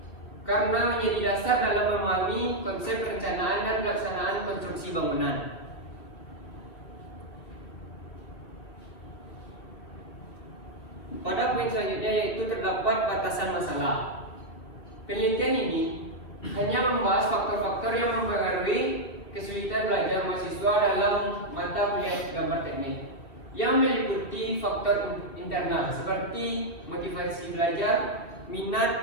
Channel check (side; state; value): right; late; 2.5 ms